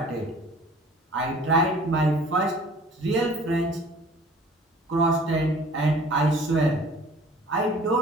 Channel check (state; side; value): normal; both; correlation 0.50